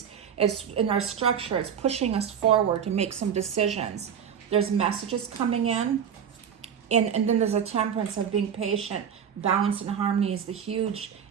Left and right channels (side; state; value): left; quieter; 8.1 dB